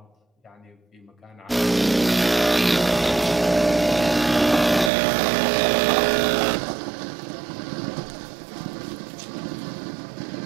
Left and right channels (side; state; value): left; drops out; at 4.9 s